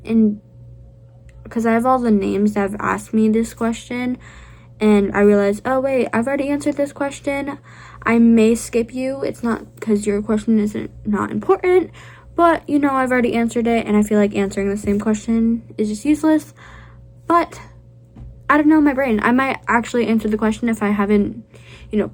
and because I have all the names that have asked me this question, and I realize, oh wait, I've already answered this question, I may skip you. It's not because your question isn't not important, but I've already answered it, and I feel like answering the same question is just useless. But I don't know, my brain, I might actually answer the question if I haven't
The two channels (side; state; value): both; identical; correlation 1.00